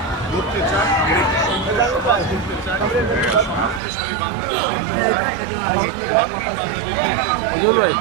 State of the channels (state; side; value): drops out; left; at 3.8 s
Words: গড়তে চাই, আমরা একটি সুন্দর সমাজ গড়তে চাই, সমৃদ্ধশালী বাংলাদেশ গড়তে চাই, একটি মানবিক বাংলাদেশ গড়তে চাই।